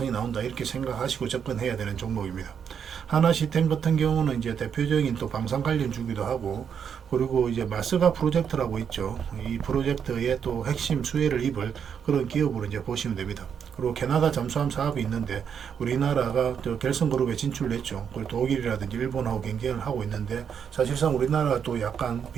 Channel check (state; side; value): quieter; left; 7.6 dB